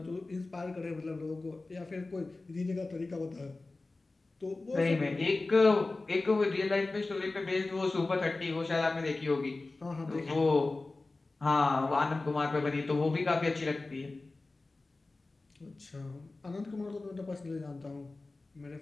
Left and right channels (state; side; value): quieter; right; 3.3 dB